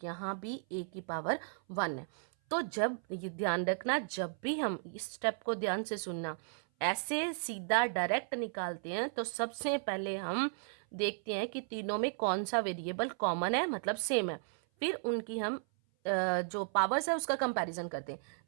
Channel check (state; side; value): silent; left; 55 dB below the other